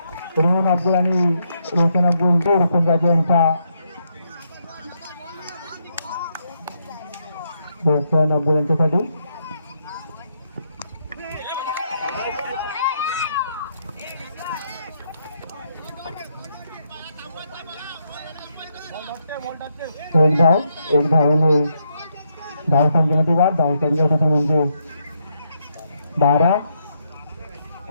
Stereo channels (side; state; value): both; inverted; correlation -0.78